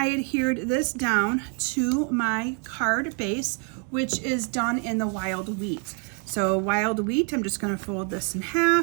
adhered this down to my card base, which is done in the wild wheat. So wild wheat, I'm just going to fold this in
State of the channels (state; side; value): quieter; left; 36.6 dB